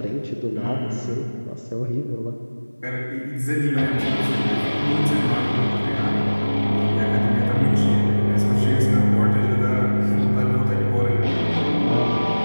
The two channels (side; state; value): both; inverted; correlation -1.00